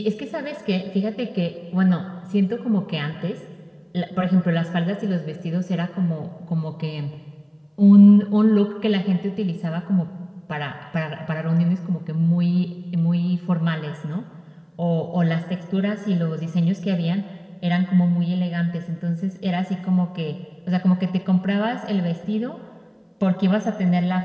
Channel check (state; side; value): identical; both; correlation 1.00